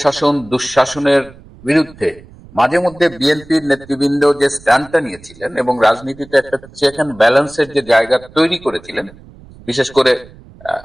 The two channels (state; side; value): noise; right; rumble, 22 dB below the sound